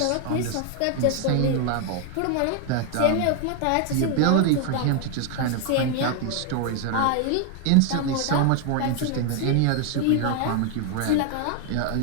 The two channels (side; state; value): both; different; correlation 0.01